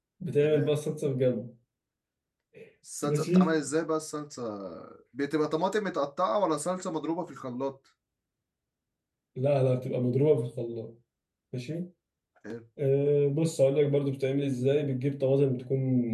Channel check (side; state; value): both; identical; correlation 1.00